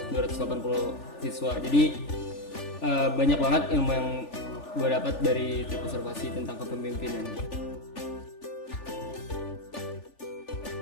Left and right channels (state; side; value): late; right; 3.4 ms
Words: siswa. Jadi banyak banget ilmu yang gue dapat dari trip observasi tentang kepemimpinan.